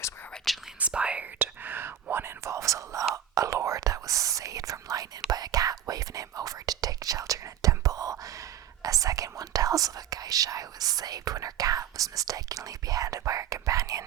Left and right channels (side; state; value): left; quieter; 10.1 dB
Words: were originally inspired. One involves a lord that was saved from lightning by a cat waving him over to take shelter in a temple. A second one tells of a geisha who was saved when her cat was mistakenly beheaded by her